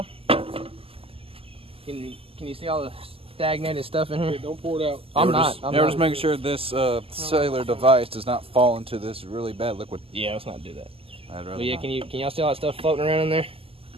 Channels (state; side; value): late; left; 0.27 ms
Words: can you see all the stagnated stuff in here? Hey, don't pour it out. I'm not. Just making sure this cellular device does not fall into this really bad liquid. Yeah, let's not do that. I'd rather But yeah, not. can y'all see all that stuff floating around in there?